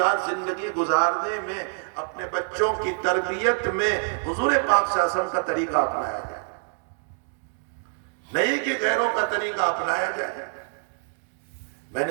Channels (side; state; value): left; silent; digital silence